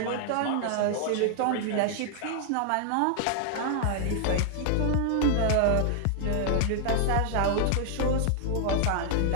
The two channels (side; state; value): both; different; correlation -0.01